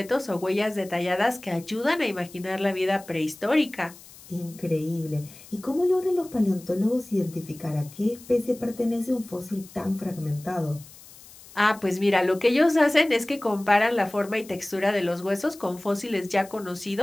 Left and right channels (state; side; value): noise; left; hiss, 20 dB below the sound